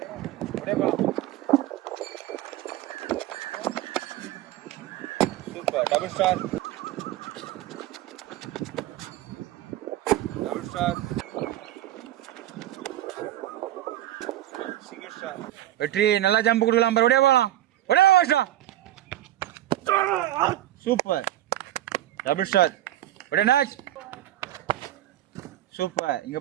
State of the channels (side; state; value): left; quieter; 13.7 dB